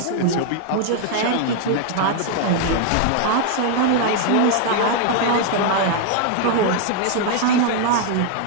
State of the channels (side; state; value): both; different; correlation 0.00